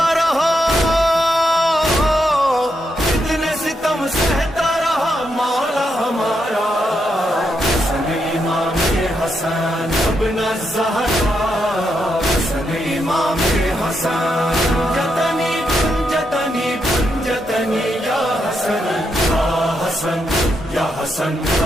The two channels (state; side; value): normal; both; correlation 0.81